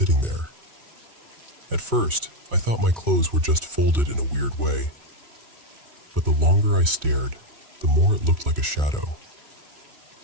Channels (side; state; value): left; late; 3.0 ms